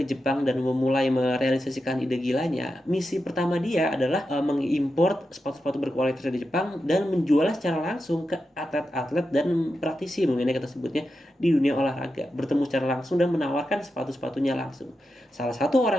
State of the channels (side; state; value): both; normal; correlation 0.89